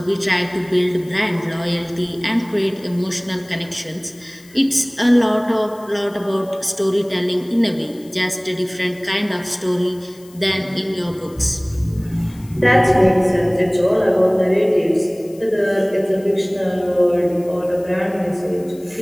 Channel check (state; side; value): noise; left; hiss, 25 dB below the sound